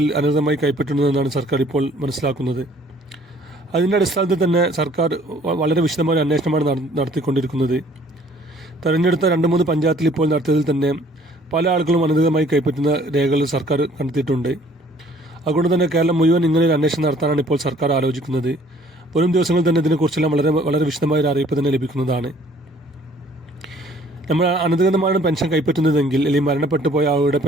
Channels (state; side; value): normal; both; correlation 0.58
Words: അനധികൃതമായി കൈപ്പറ്റുന്നതെന്നാണ് സർക്കാർ ഇപ്പോൾ മനസ്സിലാക്കുന്നത്. അതിൻ്റെ അടിസ്ഥാനത്തിൽ തന്നെ സർക്കാർ വളരെ വിശദമായ അന്വേഷണമാണ് നടത്തിക്കൊണ്ടിരിക്കുന്നത്. തെരഞ്ഞെടുത്ത 2-3 പഞ്ചായത്തിൽ ഇപ്പോൾ നടത്തിയതിൽ തന്നെ പല ആളുകളും അനധികൃതമായി കൈപ്പറ്റുന്ന രേഖകൾ സർക്കാർ കണ്ടെത്തിയിട്ടുണ്ട്. അതുകൊണ്ട് തന്നെ കേരളം മുഴുവൻ ഇങ്ങനെ ഒരു അന്വേഷണം നടത്താനാണ് ഇപ്പോൾ സർക്കാർ ആലോചിക്കുന്നത്. വരും ദിവസങ്ങളിൽ തന്നെ ഇതിനെക്കുറിച്ചെല്ലാം വളരെ വിശദമായ ഒരു അറിയിപ്പ് തന്നെ ലഭിക്കുന്നതാണ്. നമ്മൾ അനധികൃതമാണ് പെൻഷൻ കൈപ്പറ്റുന്നതെങ്കിൽ, അല്ലെങ്കിൽ മരണപ്പെട്ടു പോയ ആളുടെ